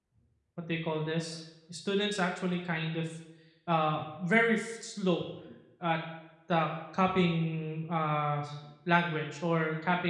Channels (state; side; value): identical; both; correlation 1.00